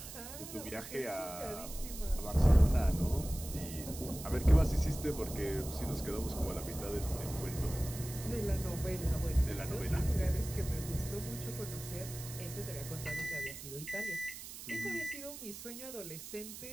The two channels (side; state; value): right; noise; hiss, 11 dB below the sound